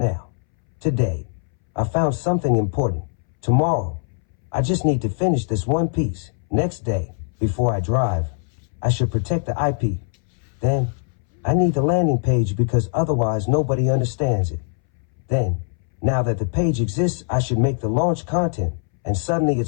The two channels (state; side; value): silent; right; 63 dB below the other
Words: Today, I found something important. Tomorrow, I just need to finish this one piece. Next day, before I drive, I should protect the IP. Then, I need the landing page because otherwise nobody understands it. Then, now that the page exists, I should make the launch content. And suddenly